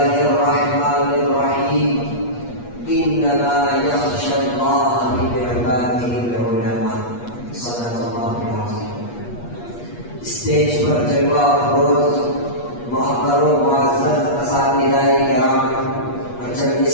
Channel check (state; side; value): late; right; 8.4 ms